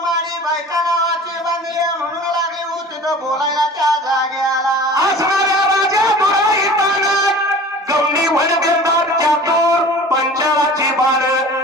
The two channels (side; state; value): both; normal; correlation 0.42